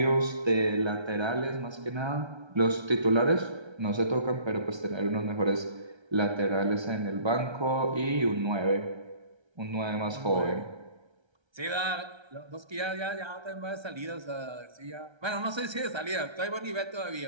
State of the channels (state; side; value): late; left; 1.3 ms